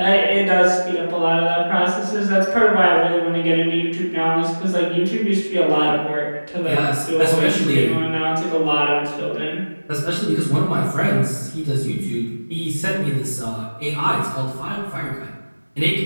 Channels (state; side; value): inverted; both; correlation -1.00